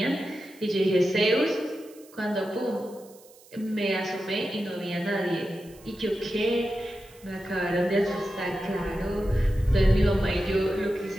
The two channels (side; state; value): right; noise; hiss, 25 dB below the sound